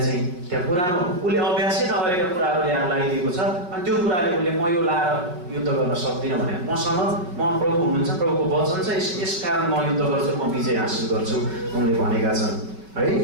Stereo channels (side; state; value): left; late; 5.4 ms